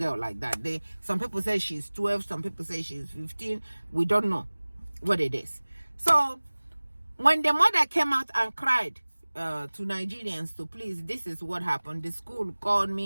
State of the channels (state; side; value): inverted; both; correlation -1.00